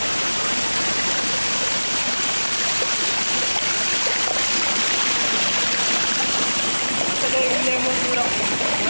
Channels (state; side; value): inverted; both; correlation -1.00